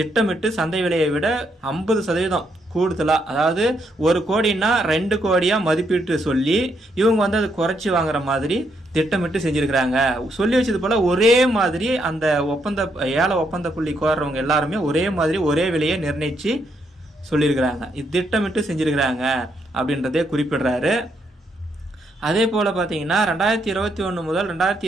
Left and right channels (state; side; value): normal; both; correlation 0.76